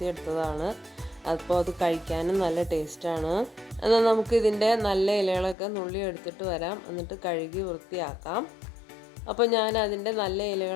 അപ്പോൾ അത് കഴിക്കാനും നല്ല ടേസ്റ്റാണ്. എന്നാൽ നമുക്ക് ഇതിൻ്റെ നല്ല ഇലകളൊക്കെ നുള്ളി എടുത്തിട്ട് വരാം, എന്നിട്ട് കഴുകി വൃത്തിയാക്കാം. അപ്പോൾ ഞാൻ അതിൻ്റെ നല്ല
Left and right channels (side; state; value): right; drops out; at 5.6 s